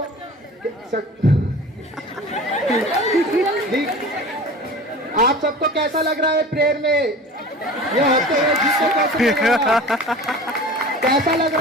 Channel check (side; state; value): both; normal; correlation 0.38